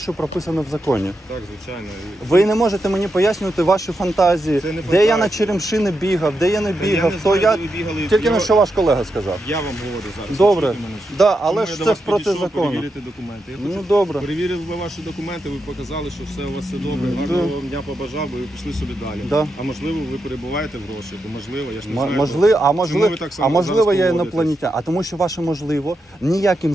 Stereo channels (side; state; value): both; normal; correlation 0.85